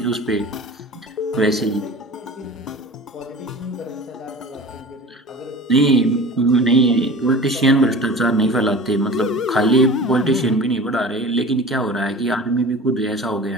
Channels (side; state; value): both; normal; correlation 0.38